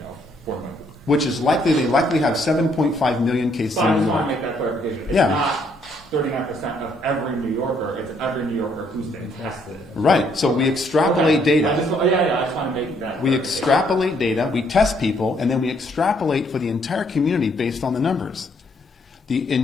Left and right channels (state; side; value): normal; both; correlation 0.69